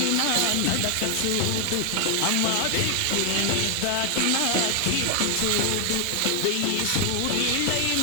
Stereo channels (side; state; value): both; different; correlation 0.00